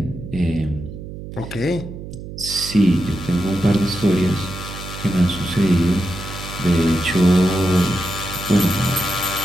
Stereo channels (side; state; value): right; noise; hum, 11 dB below the sound